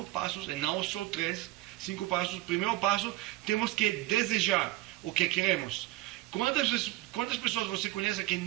passos e não só 3. 5 passos. Primeiro passo, temos que desejar o que queremos. Quantas pessoas você conhece que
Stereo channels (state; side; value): quieter; left; 17.5 dB